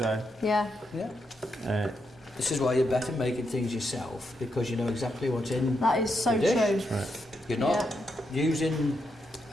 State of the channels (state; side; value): normal; both; correlation 0.82